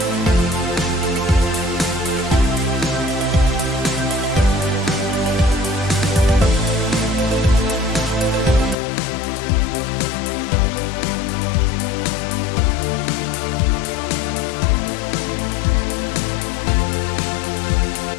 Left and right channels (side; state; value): right; drops out; at 8.8 s